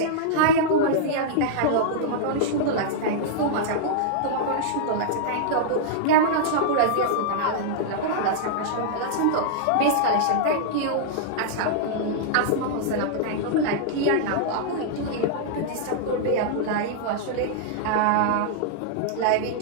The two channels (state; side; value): different; both; correlation -0.02